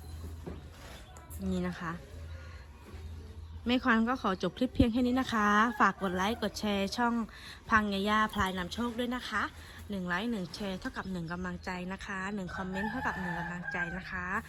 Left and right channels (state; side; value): identical; both; correlation 1.00